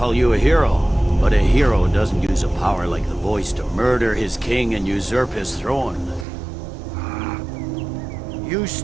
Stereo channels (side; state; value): left; drops out; at 6.2 s